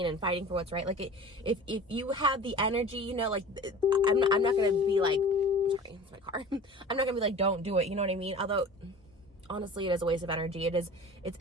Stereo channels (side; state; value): both; normal; correlation 0.40